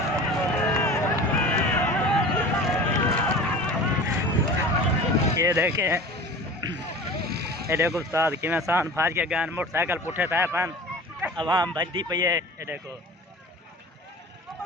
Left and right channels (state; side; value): normal; both; correlation 0.38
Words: ये देखे ये देखो उस्ताद कि सान फाज के गान मोटरसाइकिल पुठे था पन आवाम भजदी पई है। ये देखो